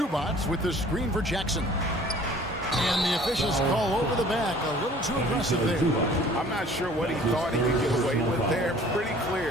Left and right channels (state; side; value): normal; both; correlation 0.51